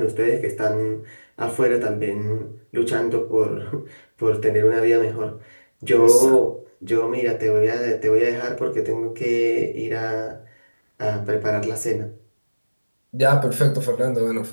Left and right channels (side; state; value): both; inverted; correlation -1.00